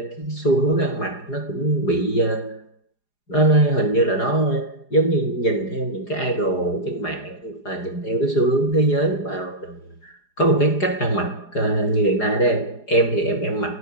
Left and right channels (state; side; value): late; right; 4.9 ms